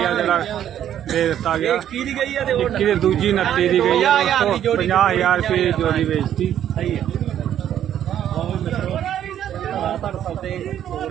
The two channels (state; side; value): quieter; left; 10.5 dB